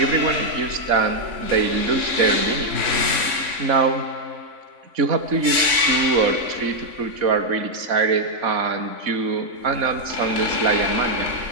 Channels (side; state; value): left; late; 3.6 ms